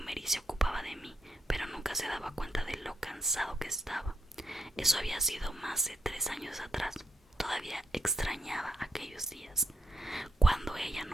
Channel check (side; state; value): both; normal; correlation 0.79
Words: y se ocupaba de mí, pero nunca se daba cuenta de lo cansado que estaba. Eso había sido más de 3 años atrás. Todavía extrañaba aquellos días. Cuando ella